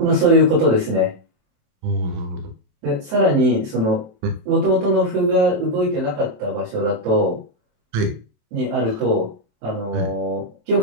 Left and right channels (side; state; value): left; late; 27 ms